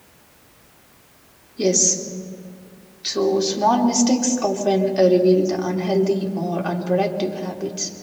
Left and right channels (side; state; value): both; identical; correlation 1.00